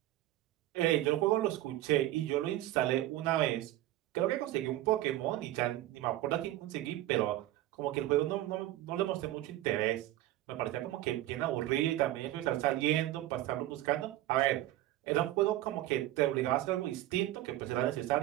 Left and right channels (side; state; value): left; quieter; 15.1 dB